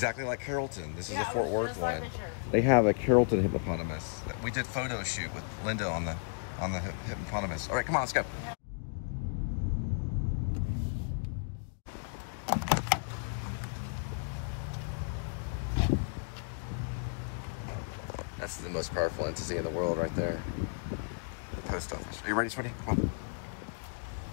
like Carrollton. This is a Fort Worth one. They have a Carrollton hippopotamus. We did photo shoot with Linda on the hippopotamus. All right, come on, let's go. That's the most powerful entity in the world right there. The post office. Are you ready, sweetie? Come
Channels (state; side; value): silent; right; digital silence